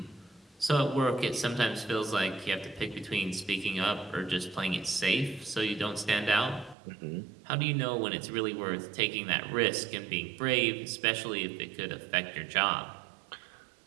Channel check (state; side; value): drops out; left; at 6.8 s